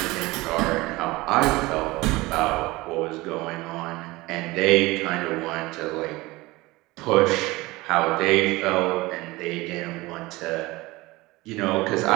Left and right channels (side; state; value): left; quieter; 20.9 dB